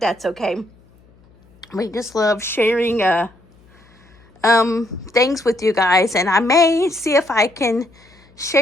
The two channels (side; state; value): left; noise; hum, 30 dB below the sound